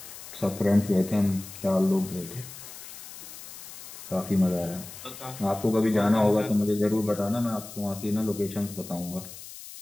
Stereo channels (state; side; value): noise; left; hiss, 14 dB below the sound